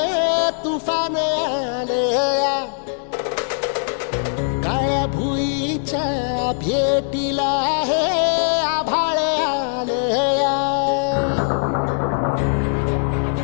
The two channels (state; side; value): silent; right; digital silence